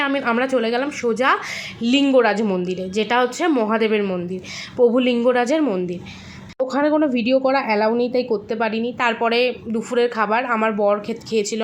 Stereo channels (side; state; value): both; identical; correlation 1.00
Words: আমরা চলে গেলাম সোজা লিঙ্গরাজ মন্দিরে, যেটা হচ্ছে মহাদেবের মন্দির, প্রভু লিঙ্গরাজের মন্দির। ওখানে কোনো ভিডিও করা অ্যালাউ নেই, তাই করতে পারিনি। তারপরে দুপুরের খাবার আমার বর খেয়েছিল,